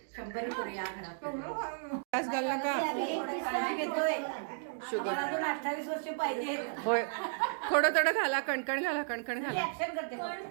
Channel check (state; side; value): silent; left; digital silence